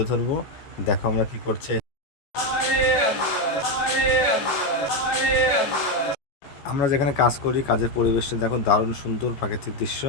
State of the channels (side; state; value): right; late; 14 ms